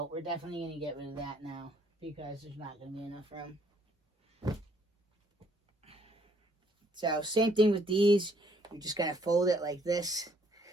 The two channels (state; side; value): normal; both; correlation 0.66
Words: we're definitely going to get rid of that now because there's not going to be enough room. So same thing with these. You're just going to fold it like this,